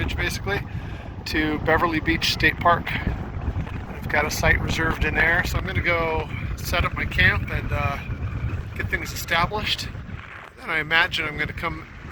basically to Beverly Beach State Park. I've got a site reserved in there, so I'm going to go set up my camp and get things established. Then I imagine I'm going to come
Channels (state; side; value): identical; both; correlation 1.00